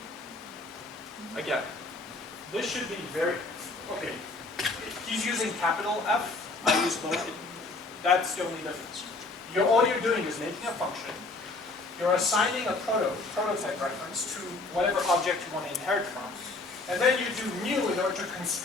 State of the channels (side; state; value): right; quieter; 3.4 dB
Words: Again, this should be very, okay. He's using capital F, I use lower. That's the only difference. All you're doing is making a function. You're assigning a prototype reference to whatever object you want to inherit from. And then you do new in order to